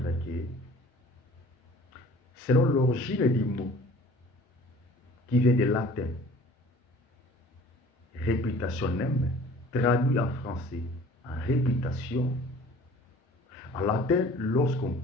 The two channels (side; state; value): both; normal; correlation 0.48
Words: que, selon l'origine du mot, qui vient du latin, reputationem, traduit en français en réputation, en latin, lorsqu'on